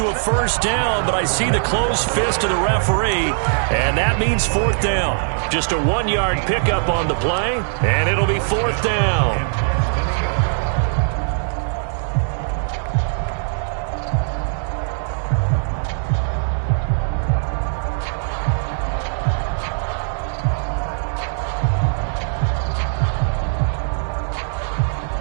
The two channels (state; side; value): silent; left; digital silence